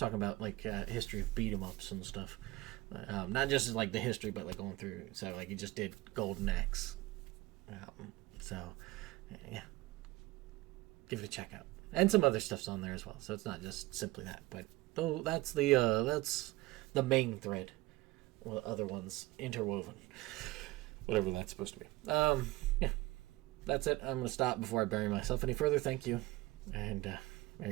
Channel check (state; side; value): quieter; left; 19.7 dB